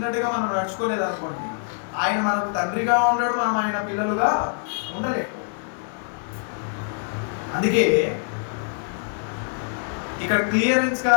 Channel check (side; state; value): right; silent; 62 dB below the other